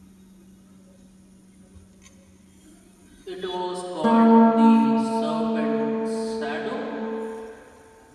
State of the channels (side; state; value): both; identical; correlation 1.00